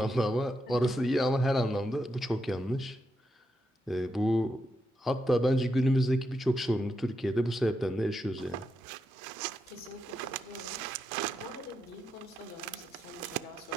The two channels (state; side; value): normal; both; correlation 0.84